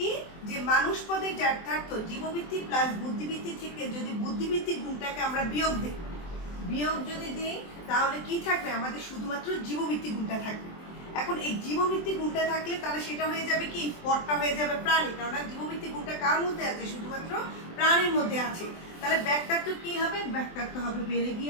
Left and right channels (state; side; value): late; right; 23 ms